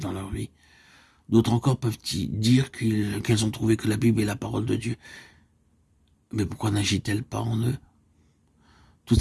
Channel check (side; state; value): both; identical; correlation 1.00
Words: dans leur vie? D'autres encore peuvent dire qu'elles ont trouvé que la Bible est la parole de Dieu. Mais pourquoi n'agit-elle pas en eux? Toute